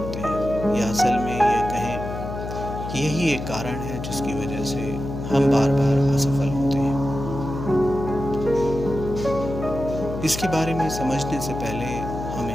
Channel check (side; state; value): left; noise; hum, 7 dB below the sound